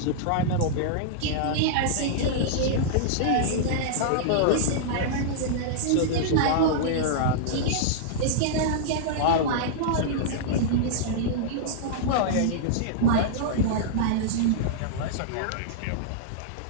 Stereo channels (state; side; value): different; both; correlation -0.02